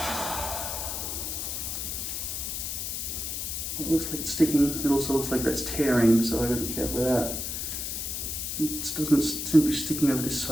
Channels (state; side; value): noise; left; hiss, 3 dB below the sound